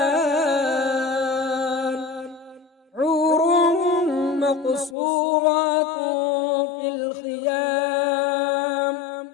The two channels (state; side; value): drops out; right; at 5.0 s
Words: حور مقصورات في الخيام